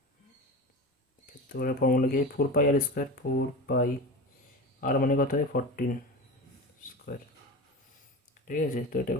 ক্ষেত্রফলের ফর্মুলা কি, 4 পাই আর স্কোয়ার, 4 পাই আর মানে কত হয় 14 স্কোয়ার। ঠিক আছে, তো এটা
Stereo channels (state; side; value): normal; both; correlation 0.28